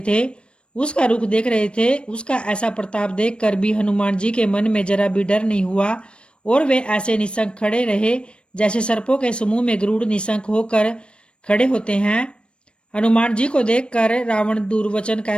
थे, उसका रुख देख रहे थे। उसका ऐसा प्रताप देखकर भी हनुमान जी के मन में जरा भी डर नहीं हुआ और वे ऐसे निशंक खड़े रहे जैसे सर्पों के समूह में गरुड़ निशंक होकर खड़े होते हैं। हनुमान जी को देखकर रावण दुर्वचन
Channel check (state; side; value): late; right; 0.057 ms